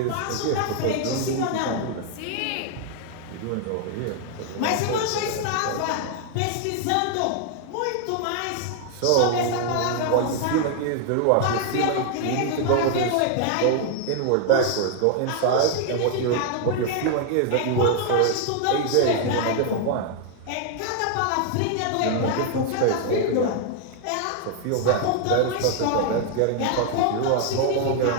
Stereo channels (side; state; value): both; different; correlation 0.00